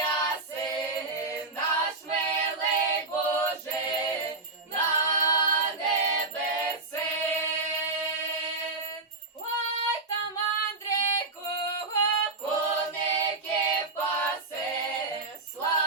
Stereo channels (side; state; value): left; quieter; 3.3 dB